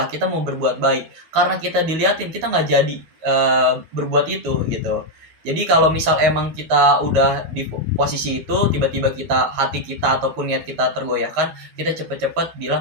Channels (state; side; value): late; left; 12 ms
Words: kita mau berbuat baik, karena kita diliatin kita nggak jadi berbuat itu gitu. Jadi kalau misal emang kita udah di posisi itu, tiba-tiba hati kita ataupun niat kita tergoyahkan, kita cepet-cepet